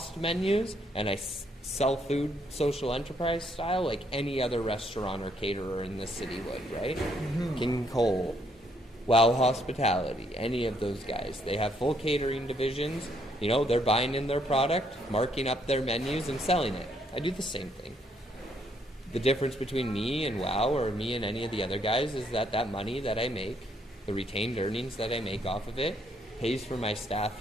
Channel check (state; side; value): normal; both; correlation 0.71